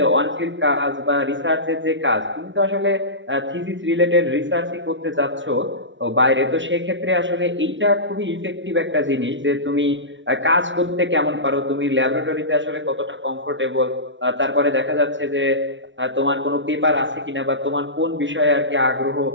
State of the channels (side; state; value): left; late; 0.55 ms